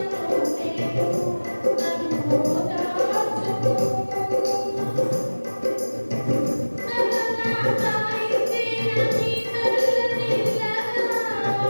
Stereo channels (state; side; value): inverted; both; correlation -1.00